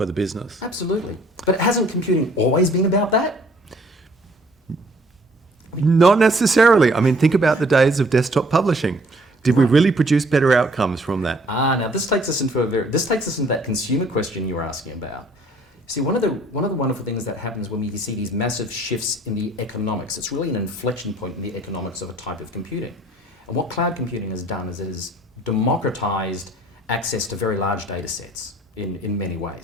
the business. Absolutely. But hasn't computing always been about that? Not necessarily. I mean, think about the days of desktop publishing. Did we really produce better outcomes from that? Now this takes us into that consumer question you were asking about. See, one of the wonderful things that happens when we see these massive shifts in the economics, it's really an inflection point in the economics of a type of computing. And what cloud computing has done is it has democratized access to very large data sets in many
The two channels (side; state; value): both; normal; correlation 0.58